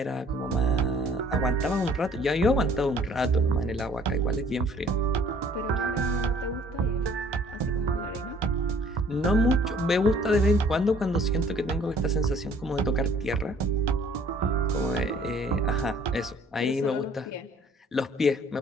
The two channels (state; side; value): normal; both; correlation 0.57